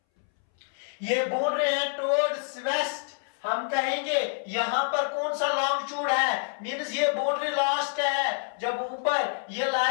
ये बाउंड्री है टुवर्ड्स वेस्ट। हम कहेंगे यहां पर कौन सा लॉन्गिट्यूड है, मींस ये बाउंड्री लास्ट है। जब ऊपर ये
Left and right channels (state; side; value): silent; right; 60 dB below the other